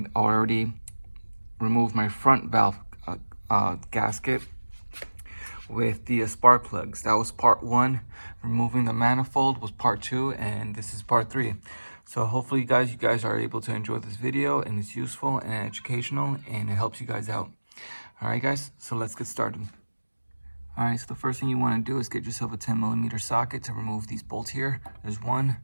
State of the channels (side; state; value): both; inverted; correlation -1.00